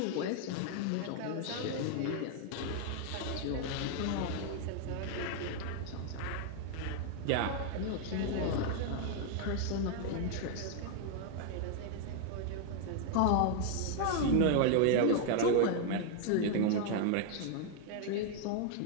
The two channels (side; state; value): both; different; correlation 0.00